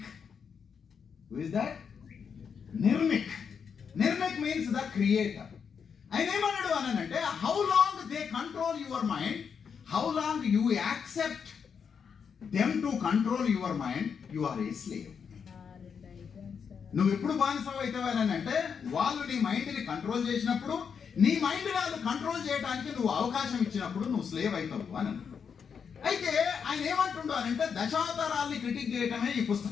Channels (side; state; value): right; quieter; 6.6 dB